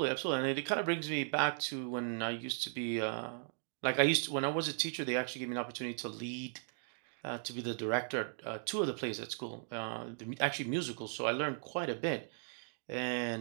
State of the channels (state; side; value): silent; left; digital silence